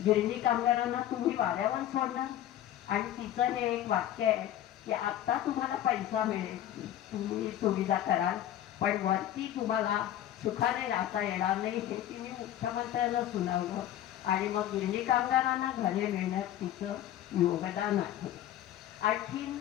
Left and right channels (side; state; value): right; quieter; 12.0 dB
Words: गिरणी कामगारांना तुम्ही वाऱ्यावर सोडणार. आणि तिचं हे एक वाक्य आहे की आत्ता तुम्हाला पैसा मिळेल, तुम्ही सुविधा कराल, पण वरती तुम्हाला सुखाने राहता येणार नाही हे तिने मुख्यमंत्र्यांना सुनावलं. आणि मग गिरणी कामगारांना घरे मिळण्यात तिचं योगदान आहे. आणखीन